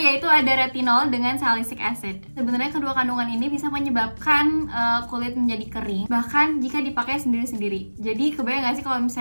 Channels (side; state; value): both; inverted; correlation -1.00